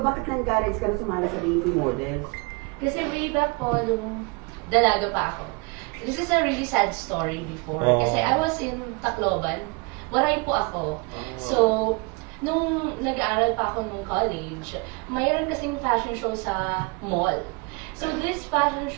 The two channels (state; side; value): quieter; left; 29.9 dB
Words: bakit na-encourage ka na sumali sa DP Models? Kasi way back po, nung dalaga pa ako. This is a really sad story before. Oh. Kasi I was in Tacloban. Waray po ako. So, nung nag-aaral pa ako nung college, mayroon kasing fashion show sa mall. So, this fashion